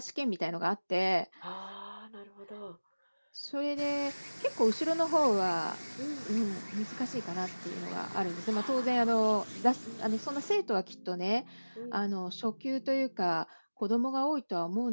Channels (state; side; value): inverted; both; correlation -1.00